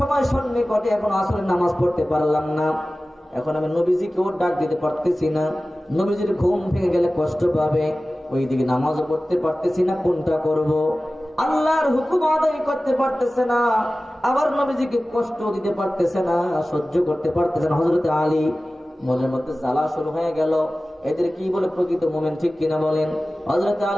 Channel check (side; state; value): both; normal; correlation 0.96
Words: সন্নিকটে, এখন আসরের নামাজ পড়তে পারলাম না, এখন আমি নবীজিকেও ডাক দিতে পারতেছি না, নবীজির ঘুম ভেঙে গেলে কষ্ট পাবে, ওইদিকে নামাজও পড়তে পারতেছি না, কোনটা করব? আল্লাহর হুকুম আদায় করতে পারতেছে না, আবার নবীজিকে কষ্ট দিতে পারতেছে না, সহ্য করতে পারতেছে না। হযরত আলী মনের মধ্যে জ্বালা শুরু হয়ে গেল, এদের কি বলে প্রকৃত মুমিন, ঠিক কিনা বলেন? হযরত